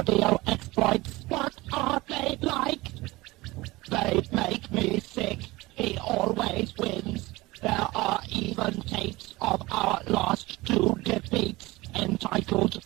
exploits. What are they like? They make me sick. He always wins. There are even tapes of our last two defeats, entitled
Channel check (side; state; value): left; quieter; 20.5 dB